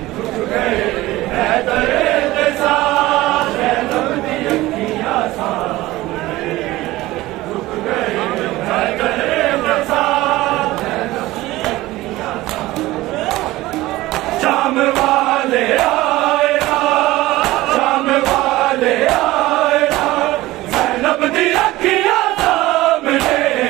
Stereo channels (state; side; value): quieter; left; 18.0 dB